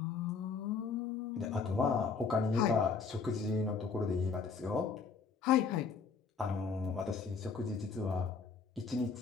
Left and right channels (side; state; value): right; quieter; 5.3 dB